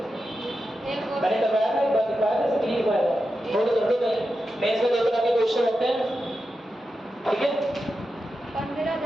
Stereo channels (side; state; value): both; normal; correlation 0.90